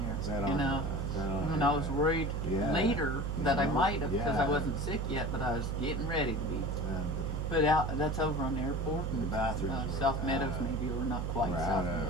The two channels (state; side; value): noise; right; hum, 1 dB below the sound